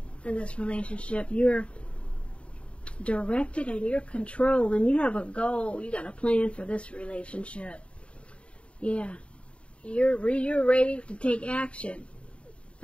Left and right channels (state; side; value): late; right; 0.060 ms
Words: in this relationship. You're directed and you're controlled, and you have a goal. You got a plan for this relationship. Yeah, you're ready to take action.